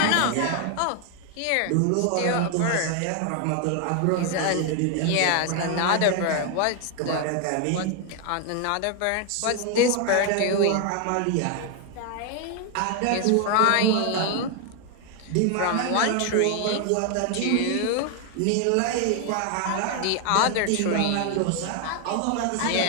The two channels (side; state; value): both; different; correlation 0.00